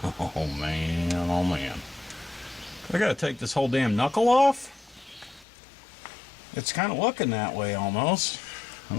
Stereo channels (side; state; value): right; drops out; at 5.5 s